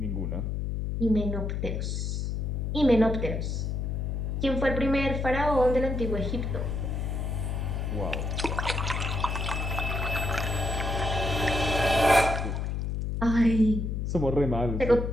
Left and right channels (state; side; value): noise; left; hum, 1 dB below the sound